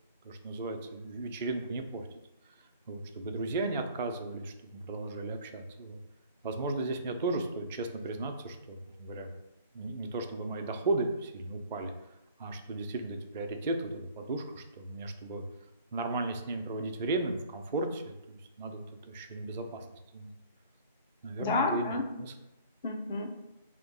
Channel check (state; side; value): inverted; both; correlation -0.51